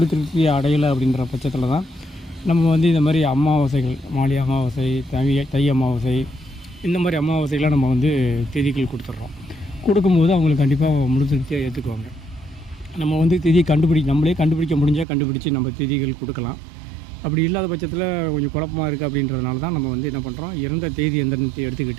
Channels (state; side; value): drops out; left; at 15.1 s